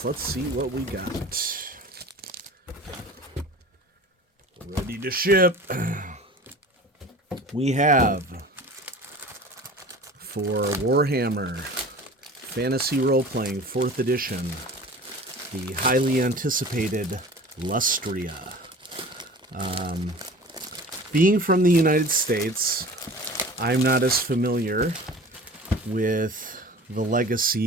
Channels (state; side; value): normal; both; correlation 0.40